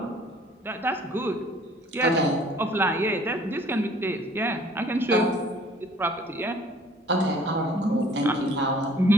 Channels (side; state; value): both; normal; correlation 0.56